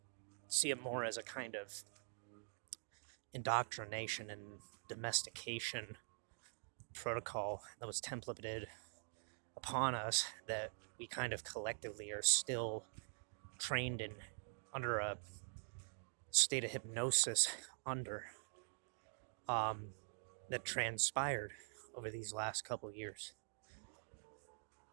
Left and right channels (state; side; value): silent; left; digital silence